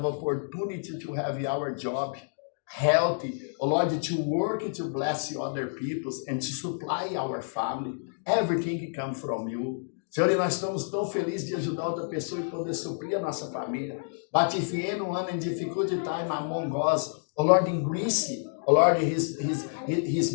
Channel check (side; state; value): right; silent; digital silence